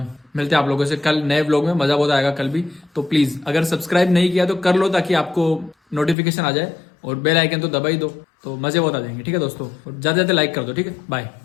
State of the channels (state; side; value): drops out; right; at 6.2 s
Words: मिलते हैं आप लोगों से कल नए व्लॉग में, मजा बहुत आएगा कल भी। तो प्लीज अगर सब्सक्राइब नहीं किया तो कर लो, ताकि आपको नोटिफिकेशन आ जाए, और बेल आइकन तो दबा ही दो, तो मजे बहुत आ जाएंगे। ठीक है दोस्तों, और ज्यादा ज्यादा लाइक कर दो। ठीक है, बाय